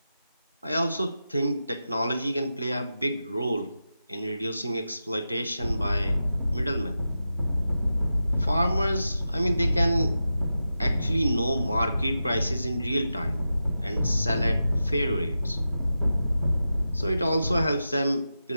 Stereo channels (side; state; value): both; inverted; correlation -0.90